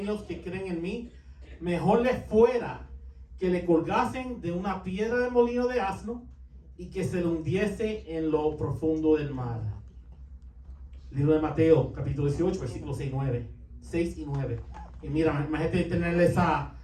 que creen en mí, mejor les fuera que le colgasen de una piedra de molino de asno y que se le hundiese en lo profundo del mar. Libro de Mateo, capítulo 18, versículos 6 y 9. Y mira, imagínate tenerle esa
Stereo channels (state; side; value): identical; both; correlation 1.00